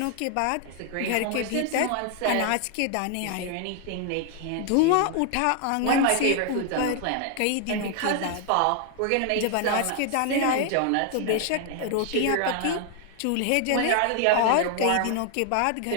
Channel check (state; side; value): different; both; correlation 0.00